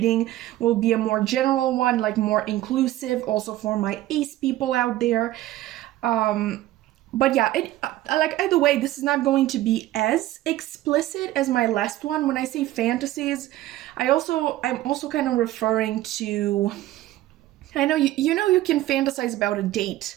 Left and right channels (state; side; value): quieter; left; 15.2 dB